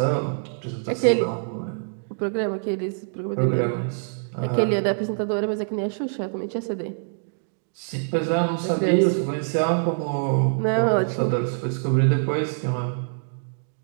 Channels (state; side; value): silent; left; digital silence